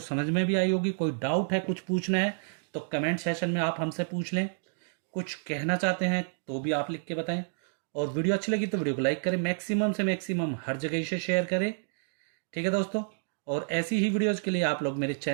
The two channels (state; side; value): silent; left; digital silence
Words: समझ में भी आई होगी। कोई डाउट है, कुछ पूछना है, तो कमेंट सेशन में आप हमसे पूछ लें। कुछ कहना चाहते हैं तो भी आप लिख के बताएं। और वीडियो अच्छी लगी तो वीडियो को लाइक करें, मैक्सिमम से मैक्सिमम हर जगह इसे शेयर करें। ठीक है दोस्तों, और ऐसी ही वीडियोज के लिए आप लोग मेरे